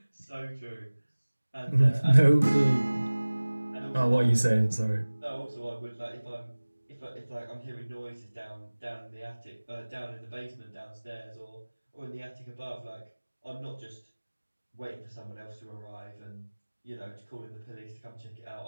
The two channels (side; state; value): both; inverted; correlation -1.00